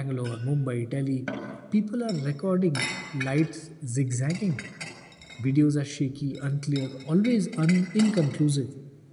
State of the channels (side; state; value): both; identical; correlation 1.00